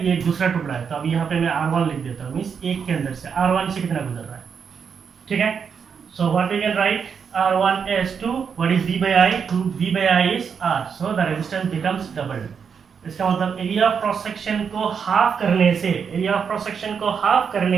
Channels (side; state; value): left; quieter; 6.6 dB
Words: ये एक दूसरा टुकड़ा है, तो अब यहाँ पे मैं R1 लिख देता हूँ, मीन्स एक के अंदर से R1 से कितना गुजर रहा है, ठीक है। So what we can write, R1 as 2, what is V/I, 2V/I is R, so the resistance becomes doubled। इसका मतलब एरिया ऑफ क्रॉस सेक्शन को हाफ करने से, एरिया ऑफ क्रॉस सेक्शन को हाफ